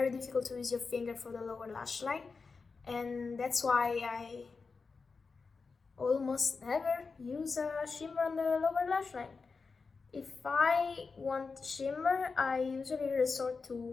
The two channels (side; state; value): right; quieter; 4.6 dB